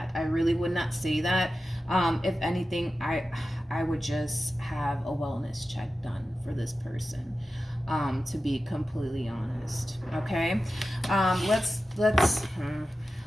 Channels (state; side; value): normal; both; correlation 0.93